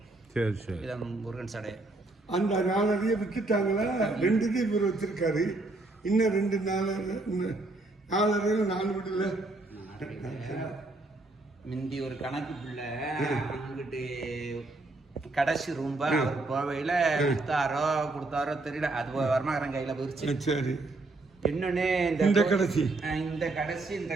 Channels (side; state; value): left; quieter; 3.1 dB